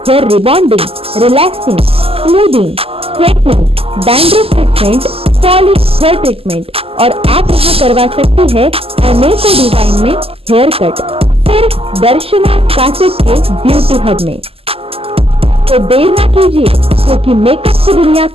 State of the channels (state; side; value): late; left; 0.28 ms